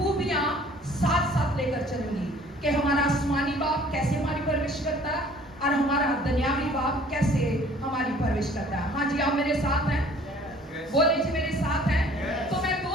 ساتھ ساتھ لے کر چلوں گی کہ ہمارا آسمانی باپ کیسے ہماری پرورش کرتا ہے اور ہمارا دنیاوی باپ کیسے ہماری پرورش کرتا ہے. ہاں جی, آپ میرے ساتھ ہیں؟ بولے جی میرے ساتھ ہیں. تو میں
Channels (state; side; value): normal; both; correlation 0.54